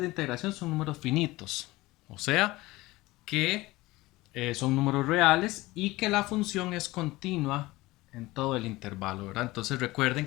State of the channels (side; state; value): right; quieter; 19.7 dB